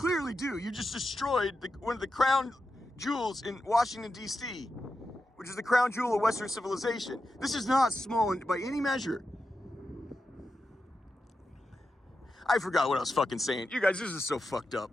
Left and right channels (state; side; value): normal; both; correlation 0.90